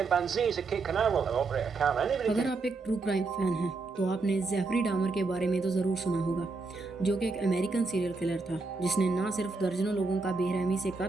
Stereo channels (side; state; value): left; quieter; 3.8 dB